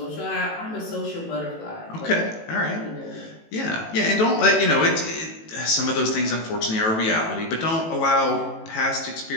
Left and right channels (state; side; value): late; right; 18 ms